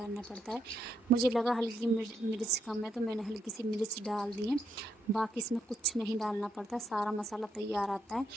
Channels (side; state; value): both; normal; correlation 0.77